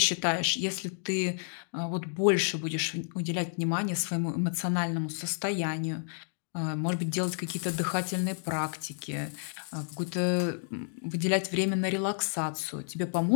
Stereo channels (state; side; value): silent; right; digital silence